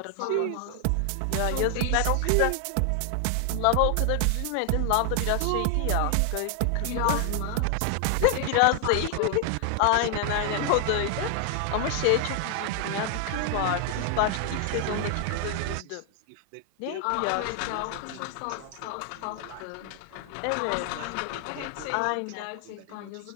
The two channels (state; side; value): different; both; correlation 0.00